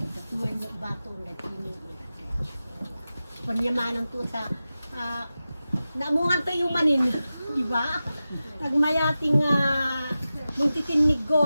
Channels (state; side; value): inverted; both; correlation -0.94